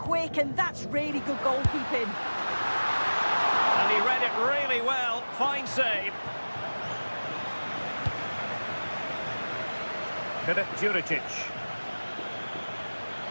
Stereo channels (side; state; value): both; inverted; correlation -1.00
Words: and that's really good goalkeeping. And he read it really well. Fine save. Filip Juricic.